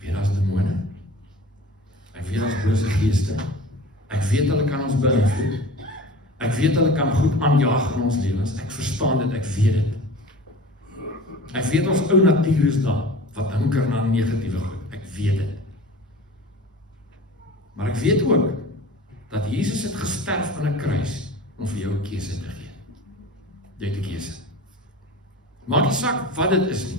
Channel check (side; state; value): both; normal; correlation 0.39